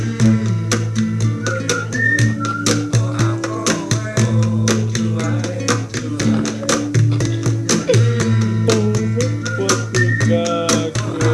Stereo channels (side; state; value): both; identical; correlation 1.00